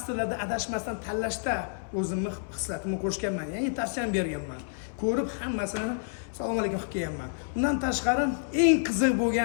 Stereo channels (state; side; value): silent; right; 59 dB below the other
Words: adashmasdan tanlashda o'zimni hislatimni qo'shganman. Ya'ni tavsiyam berganman. Ko'rib hammasini assalomu alaykum qilib kelganman. Undan tashqari eng qiziq